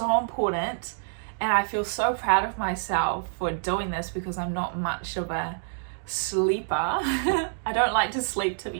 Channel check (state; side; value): silent; left; digital silence